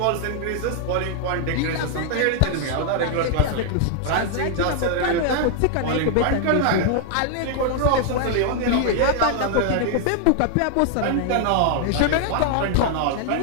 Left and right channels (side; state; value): both; different; correlation 0.00